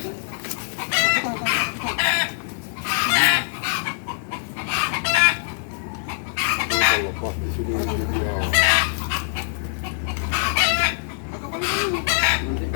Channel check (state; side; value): silent; right; digital silence